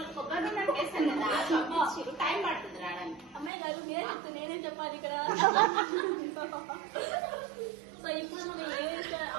కొబ్బరి నూనె వేస్తాను కదా, పంపించారు. టైం పడుతుంది రావడానికి. అమ్మాయి గారు మీరే చెప్తే నేనేం చెప్పాలి ఇక్కడ? సో ఇప్పుడు మనం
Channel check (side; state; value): left; drops out; at 3.5 s